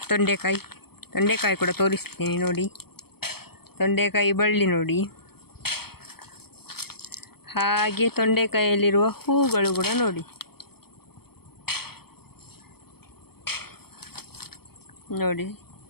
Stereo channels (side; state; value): right; late; 0.96 ms